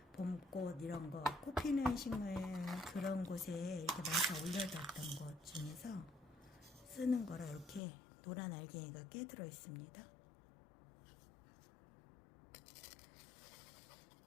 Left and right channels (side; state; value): right; drops out; at 7.8 s